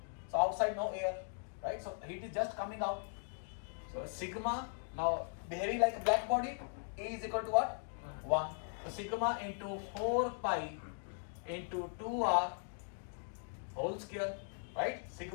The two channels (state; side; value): silent; right; digital silence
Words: So outside no air, right? So heat is just coming out. So sigma, now behaving like a black body, E is equal to what? 1. So sigma into 4 pi into 2r whole square, right?